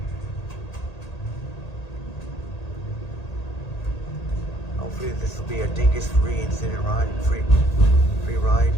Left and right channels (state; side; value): late; right; 1.8 ms